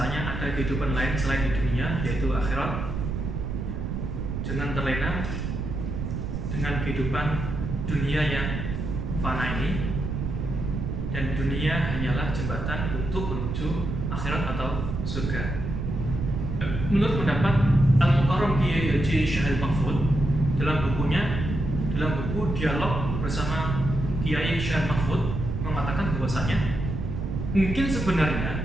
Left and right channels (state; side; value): noise; right; rumble, 3 dB below the sound